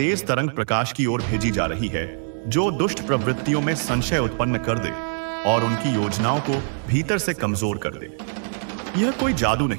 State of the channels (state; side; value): silent; left; digital silence